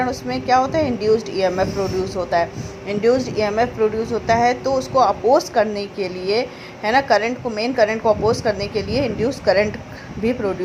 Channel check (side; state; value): both; identical; correlation 1.00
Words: उसमें क्या होता है, इंड्यूस्ड ईएमएफ प्रोड्यूस होता है। इंड्यूस्ड ईएमएफ प्रोड्यूस होता है तो उसको अपोज करने के लिए, है ना, करंट को, मेन करंट को अपोज करने के लिए इंड्यूस करंट भी